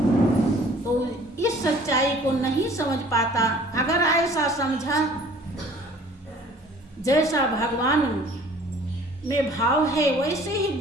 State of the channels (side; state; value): both; normal; correlation 0.51